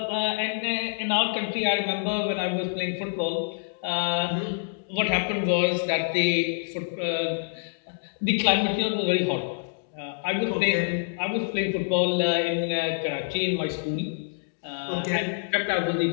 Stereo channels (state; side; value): silent; right; digital silence